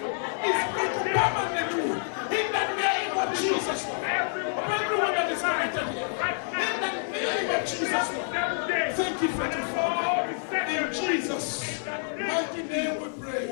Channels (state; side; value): silent; right; digital silence